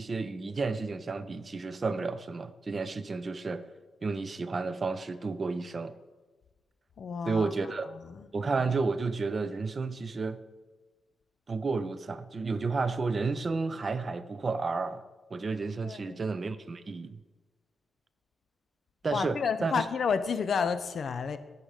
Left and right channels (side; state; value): both; normal; correlation 0.86